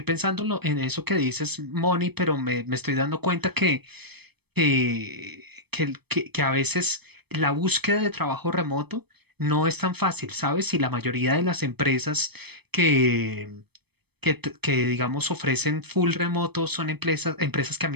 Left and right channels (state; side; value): late; left; 0.98 ms